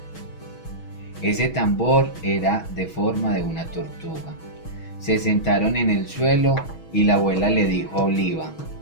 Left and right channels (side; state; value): right; late; 6.2 ms